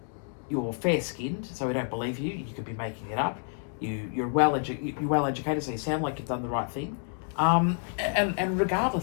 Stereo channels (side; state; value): right; silent; 59 dB below the other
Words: You're fair-skinned, so we don't believe you. You could be making it up. You're well-educated, so you sound like you've done the right thing. And